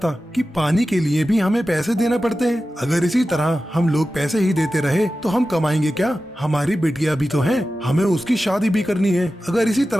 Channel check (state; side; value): normal; both; correlation 0.94